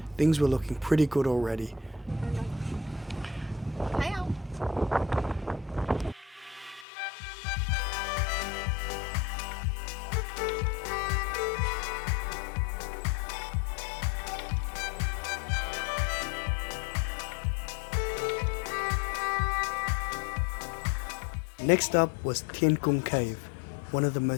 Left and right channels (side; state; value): right; drops out; at 6.9 s